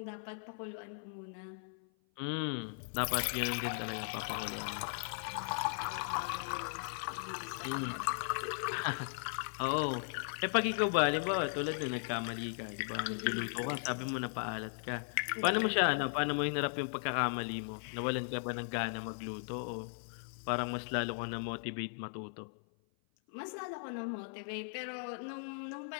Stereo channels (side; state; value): right; silent; 53 dB below the other